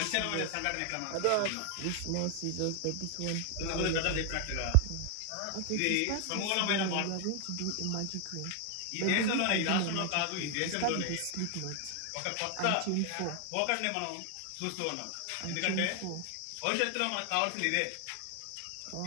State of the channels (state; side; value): different; both; correlation 0.00